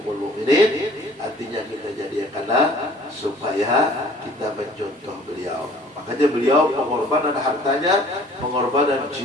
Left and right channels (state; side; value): normal; both; correlation 0.53